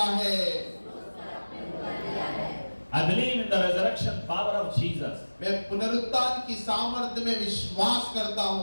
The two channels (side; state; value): both; inverted; correlation -1.00